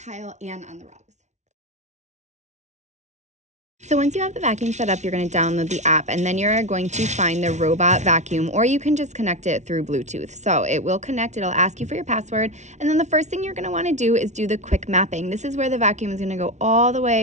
and on the rugs. So once you have the vacuum set up, you're going to download the app, and then you're going to find the robot vacuum, or you can just connect it through Bluetooth. So it will connect, it'll ask you for your password, and then the first thing you're going to want to do is do the quick mapping. This is where the vacuum is going to go all the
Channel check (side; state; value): left; late; 0.33 ms